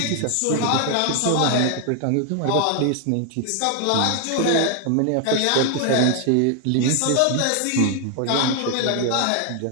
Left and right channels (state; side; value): different; both; correlation 0.00